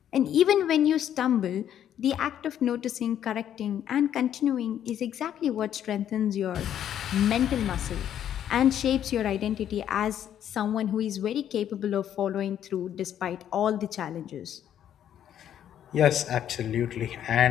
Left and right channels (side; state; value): right; quieter; 10.3 dB